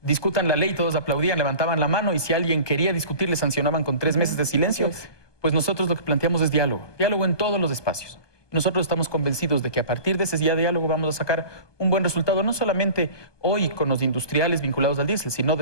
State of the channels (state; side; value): late; right; 1.2 ms